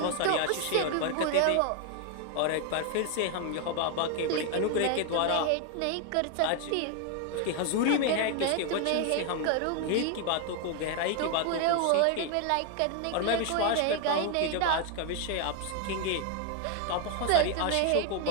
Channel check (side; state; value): both; different; correlation 0.01